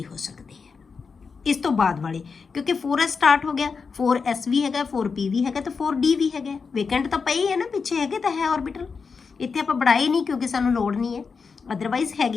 हो सकते हैं इस तो बाद वाले, क्योंकि 4s स्टार्ट हो गया 4s भी है 4p भी है तो 4d भी है। वेकेंट तो पई है ना पिछे है तो है ऑर्बिटल, इतने आप बढ़ाए नहीं क्योंकि सानू लोड़ नहीं है, अदरवाइज है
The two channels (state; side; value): quieter; right; 5.2 dB